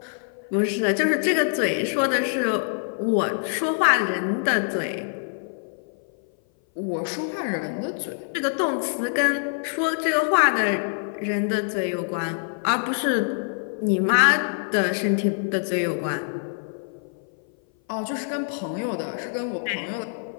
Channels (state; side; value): silent; right; 57 dB below the other